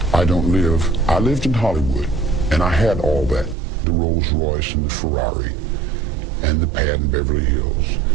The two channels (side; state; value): left; drops out; at 3.6 s